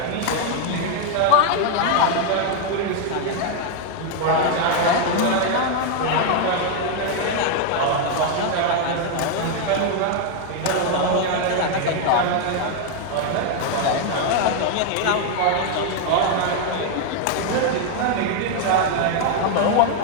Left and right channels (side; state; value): both; different; correlation 0.00